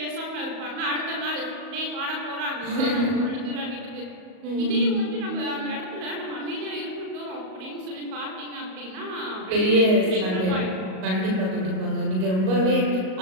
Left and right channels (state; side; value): late; left; 38 ms